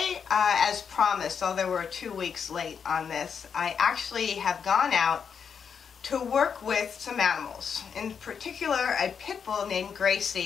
as promised, although we're 2 weeks late on this, I actually have gone out to work with some animals. In particular, a pit bull named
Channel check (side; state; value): right; quieter; 6.8 dB